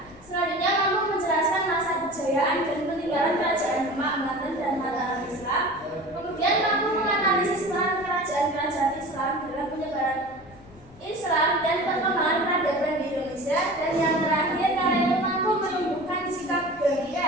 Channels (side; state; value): left; noise; rumble, 23 dB below the sound